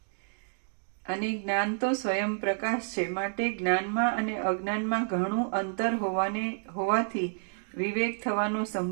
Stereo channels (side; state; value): left; silent; 58 dB below the other